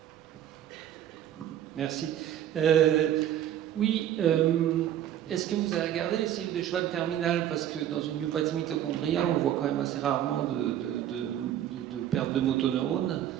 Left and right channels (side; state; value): left; quieter; 11.1 dB